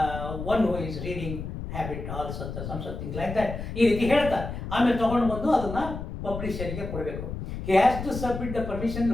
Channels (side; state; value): left; noise; rumble, 7 dB below the sound